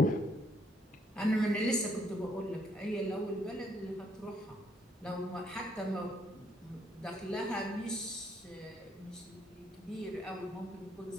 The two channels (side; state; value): both; normal; correlation 0.70